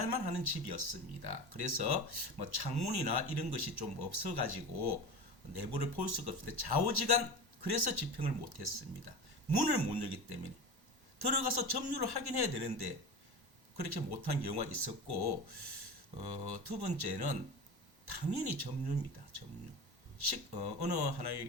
하는 집이었습니다. 그래서 창문이나 이런 것이 좀 없어가지고 내부를 볼 수가 없는데 좌우지간 그래서 집행을 못했습니다. 문을 못 열기 때문에 들어가서 점유를 확인해야 되는데 그렇게 못한 경우가 있었고, 두 번째는 당연히 점유입니다. 점유. 어느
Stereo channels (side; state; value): left; late; 1.1 ms